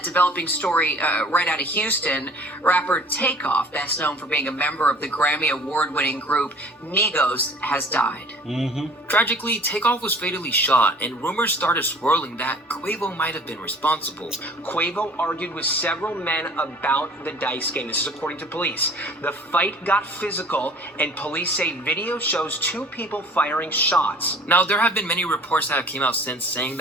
developing story right out of Houston, rapper Takeoff, best known for being a member of the Grammy Award-winning group Migos, has died. Tragically, Takeoff was fatally shot, and rumors started swirling that Quavo might have been responsible. Quavo argued with several men about the dice game. This is according to police. The fight got physical, and police say video shows two people firing shots. Now, there have been many reports that have came out since saying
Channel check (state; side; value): normal; both; correlation 0.50